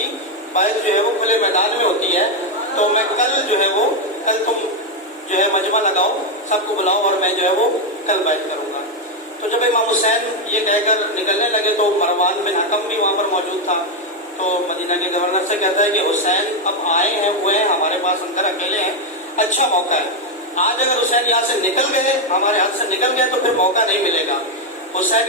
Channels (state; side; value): normal; both; correlation 0.04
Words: بیعت جو ہے وہ کھلے میدان میں ہوتی ہے۔ تو میں کل تم جو ہے مجمع لگاؤ، سب کو بلاؤ اور میں جو ہے وہ کل بیعت کروں گا۔ تو جب امام حسین یہ کہہ کر نکلنے لگے تو مروان بن حکم بھی وہاں پر موجود تھا۔ تو مدینہ کے گورنر سے کہتا ہے کہ حسین اب آئے ہیں، ہوئے ہیں ہمارے پاس، اندر اکیلے ہیں، اچھا موقع ہے، آج اگر حسین یہاں سے نکل گئے، ہمارے ہاتھ سے نکل گئے تو پھر موقع نہیں ملے گا،